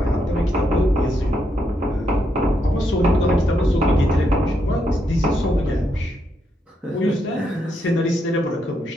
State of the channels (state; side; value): normal; both; correlation 0.79